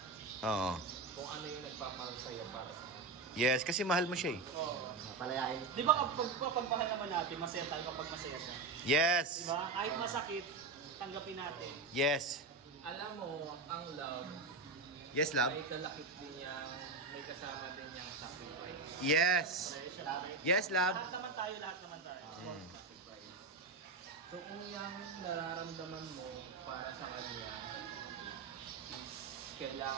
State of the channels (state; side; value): quieter; left; 3.9 dB